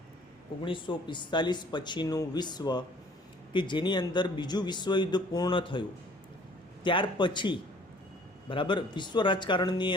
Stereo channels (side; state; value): both; normal; correlation 0.55